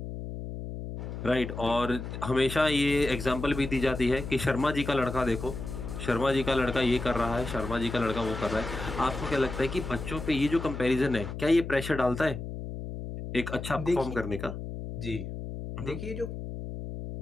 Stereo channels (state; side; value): noise; left; hum, 7 dB below the sound